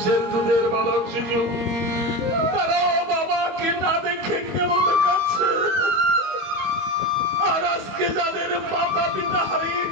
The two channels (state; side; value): late; left; 22 ms